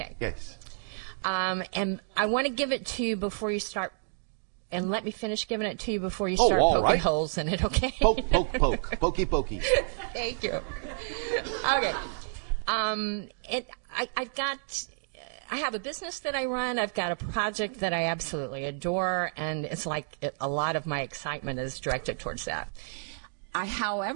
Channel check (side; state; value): left; silent; digital silence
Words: Yes. And I want to give it to you before you start... And let me finish giving it to you before you Oh, start all poking right. holes in it, okay? Poke, poke, poke. Pokey, pokey. Thank you. Okay. I have a business that I run. I've got a project that I absolutely adore, and it's like a lot of my excitement is directed towards that.